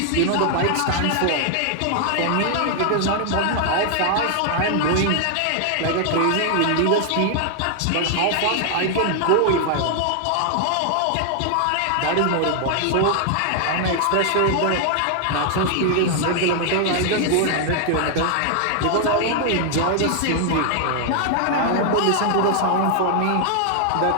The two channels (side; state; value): both; different; correlation 0.00